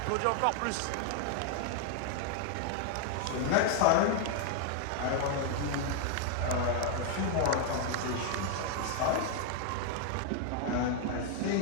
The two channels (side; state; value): both; different; correlation 0.00